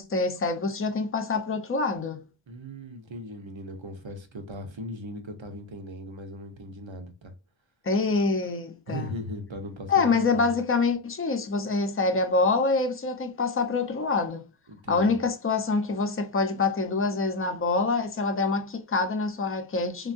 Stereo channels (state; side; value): quieter; right; 3.4 dB